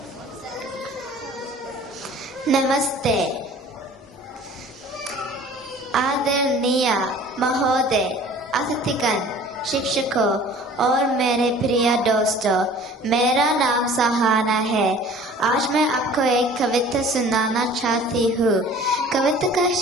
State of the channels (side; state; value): both; normal; correlation 0.47